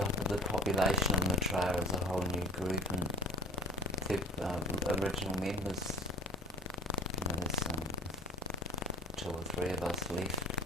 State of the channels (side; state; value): both; normal; correlation 0.41